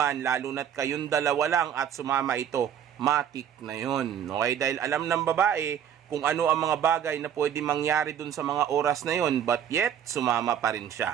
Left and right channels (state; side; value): quieter; left; 9.1 dB